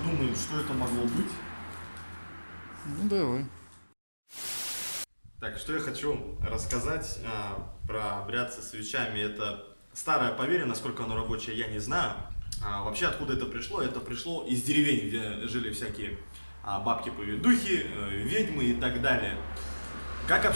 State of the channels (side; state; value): both; inverted; correlation -1.00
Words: что это могло быть. Ну давай. Так, что я хочу рассказать про обряд со свечами. Это старое поверье, насколько оно рабочее, я не знаю. Вообще, откуда это пришло? Это пришло из деревень, где жили всякие бабки-поведухи, ведьмы и так далее. Как